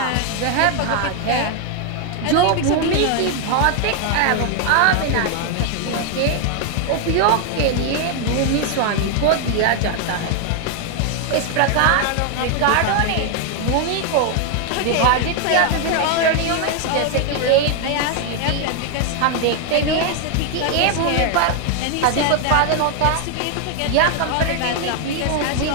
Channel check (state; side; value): different; both; correlation 0.01